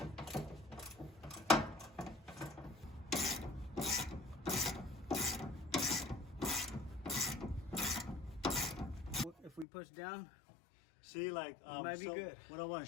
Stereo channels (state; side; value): drops out; right; at 9.7 s